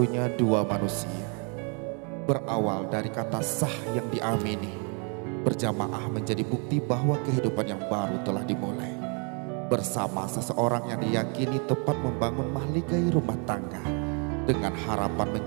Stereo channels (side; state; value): left; quieter; 37.3 dB